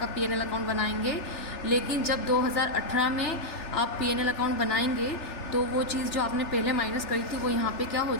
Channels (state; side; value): late; right; 3.4 ms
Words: पीएनएल अकाउंट बनाएंगे, लेकिन जब 2018 में आप पीएनएल अकाउंट बनाएंगे तो वो चीज़ जो आपने पहले माइनस करी थी वो यहाँ पे क्या हो